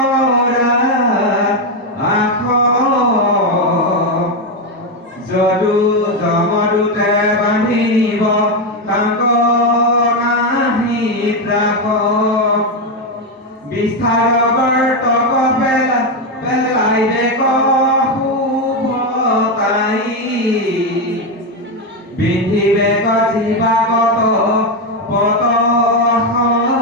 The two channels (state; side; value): normal; both; correlation 0.08